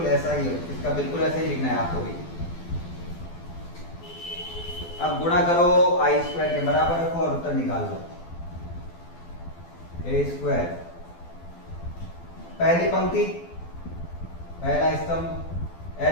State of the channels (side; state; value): right; late; 12 ms